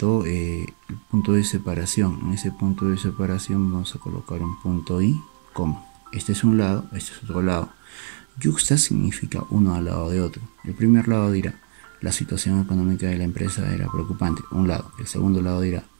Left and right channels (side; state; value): left; silent; digital silence